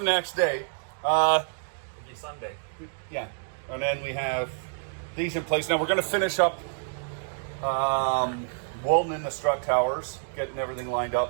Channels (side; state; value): left; silent; digital silence